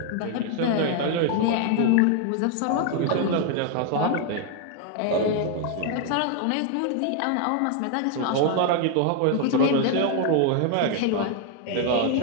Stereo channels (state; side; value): different; both; correlation 0.00